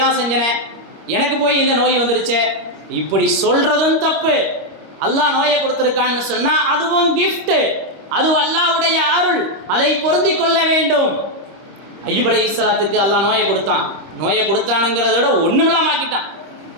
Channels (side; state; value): left; late; 25 ms